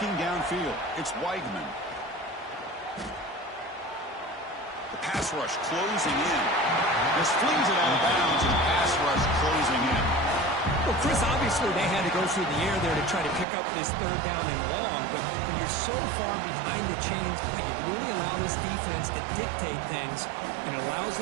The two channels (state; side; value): drops out; left; at 13.5 s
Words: downfield, it's Weigman. The pass rush closing in. This flings it out of bounds, and pass rush closing in. Well, Chris, obviously they had to go through the air there to try to pick up this 3rd down and long, but when you're so far behind the chains, you really allow this defense to dictate things, and it allows